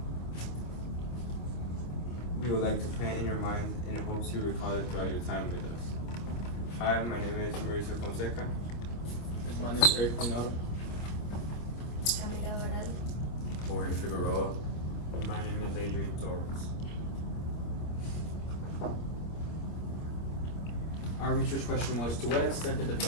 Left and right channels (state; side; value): late; right; 25 ms